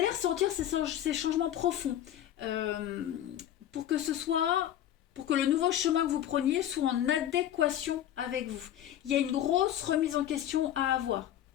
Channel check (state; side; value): quieter; right; 11.5 dB